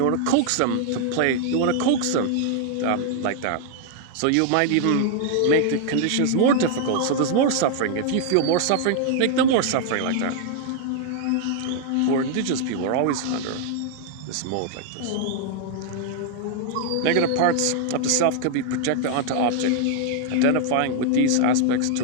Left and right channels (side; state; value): both; different; correlation 0.00